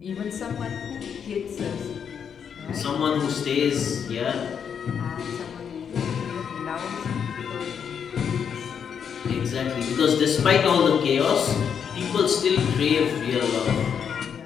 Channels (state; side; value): quieter; right; 7.5 dB